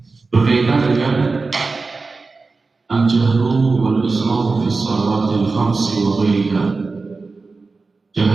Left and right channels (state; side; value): quieter; left; 4.0 dB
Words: Berkaitan dengan al-jahru wal israfu fi shalawatil khamsi wa ghairiha.